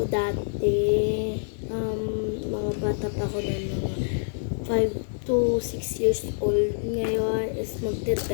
dati. Mga bata pa ako na mga 5 to 6 years old. Ngayon is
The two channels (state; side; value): silent; right; digital silence